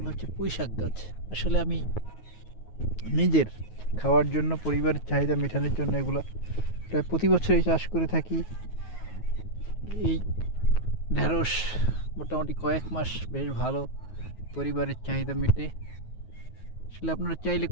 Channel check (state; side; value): late; right; 9.4 ms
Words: হচ্ছে পুঁই শাক গাছ। আসলে আমি নিজের খাওয়ার জন্য, পরিবারের চাহিদা মেটানোর জন্য এগুলো প্রায় প্রতি বছরই চাষ করে থাকি। এই ঢেঁড়স মোটামুটি কয়েক মাস বেশ ভালো পরিবারের চাহিদা মেটে। আসলে আপনারা চাইলে